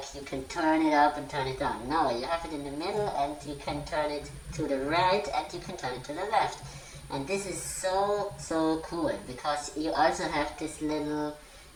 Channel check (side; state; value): both; identical; correlation 1.00